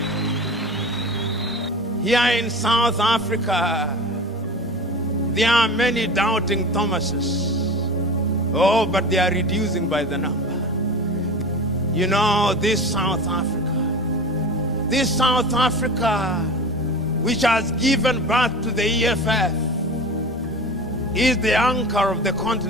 Here in South Africa, there are many doubting Thomases. Oh, but they are reducing by the number. You know, this South Africa, which has given birth to the EFF, is the anchor of the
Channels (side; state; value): both; normal; correlation 0.33